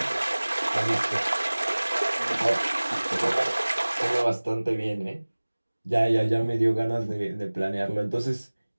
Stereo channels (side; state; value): both; inverted; correlation -1.00